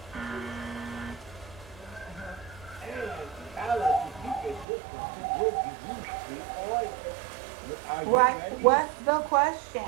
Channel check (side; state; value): left; drops out; at 4.7 s